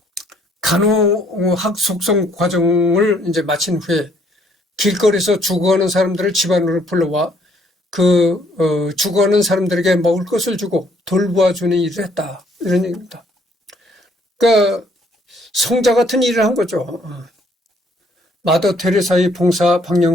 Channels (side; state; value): both; normal; correlation 0.65